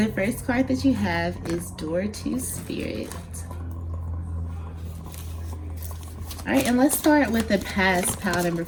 first card that you have is Door to Spirit. All right, and let's start with the past, pile number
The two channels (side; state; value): both; identical; correlation 1.00